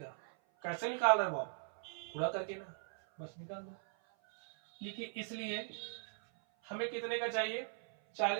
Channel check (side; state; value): left; silent; 52 dB below the other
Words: कैसे निकाल रहे हो आप, पूरा करके ना, बस निकाल दो। देखिए इसलिए हमें कितने का चाहिए,